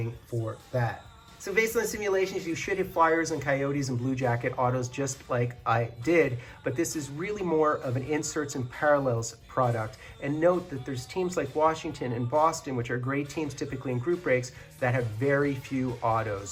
for that. So based on simulations, you should hit Flyers and Coyotes and Blue Jacket autos just like I did, but this is really more of an inserts and parallels product. And note that there's teams like Washington and Boston, which are great teams typically in group breaks, that have very few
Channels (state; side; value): identical; both; correlation 1.00